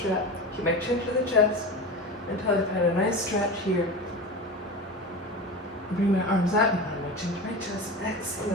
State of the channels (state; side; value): normal; both; correlation 0.28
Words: Keep my chin to the chest until I find a nice stretch here. Bring my arms up and find my chin to my chest.